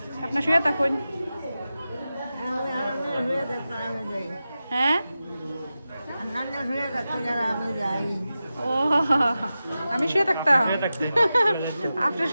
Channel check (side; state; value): both; inverted; correlation -0.93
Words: আপনার শুয়ে থাকুন হ্যাঁ ও আমি শুয়ে থাকতাম শুয়ে থাকতে আপনি